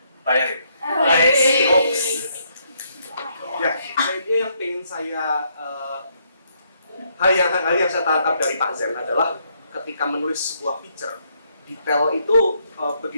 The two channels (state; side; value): inverted; both; correlation -0.73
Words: bayarin. ya, pada intinya yang pengen saya hal yang saya tangkap dari Pak Zen adalah ketika menulis sebuah feature, detail itu